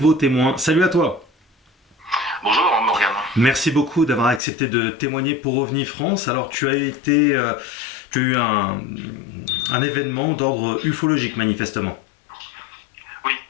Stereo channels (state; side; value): drops out; right; at 4.4 s